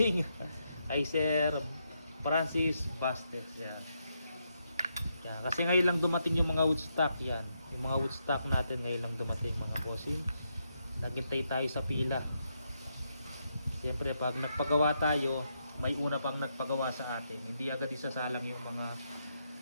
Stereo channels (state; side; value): inverted; both; correlation -0.81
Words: Kay Sir Francis Bastes. Yan. Yan. Kasi ngayon lang dumating yung mga woodstock yan. Yung mga woodstock natin ngayon lang dumating mga bossing. Naghintay tayo sa pila. Siyempre pag nagpagawa tayo, may una pang nagpagawa sa atin. Hindi agad isasalang yung mga